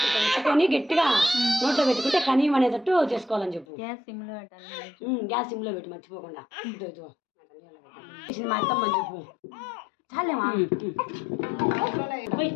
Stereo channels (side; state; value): right; drops out; at 3.7 s